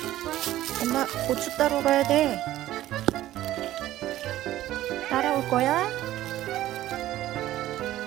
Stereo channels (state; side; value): quieter; left; 14.3 dB